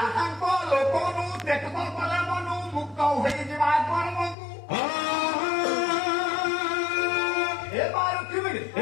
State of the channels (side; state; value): right; drops out; at 4.4 s